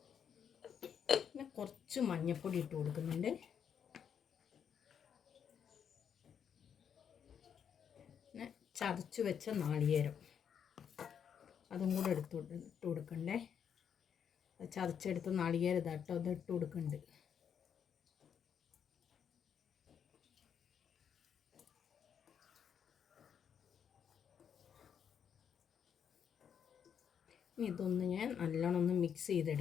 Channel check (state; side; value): quieter; right; 7.9 dB